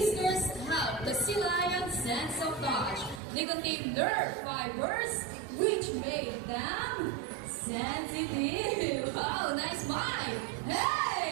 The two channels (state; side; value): drops out; left; at 3.2 s